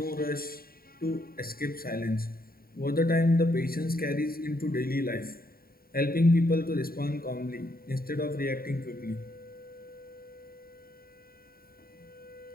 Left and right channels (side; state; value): right; late; 0.43 ms